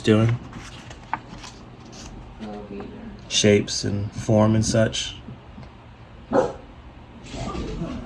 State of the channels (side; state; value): both; identical; correlation 1.00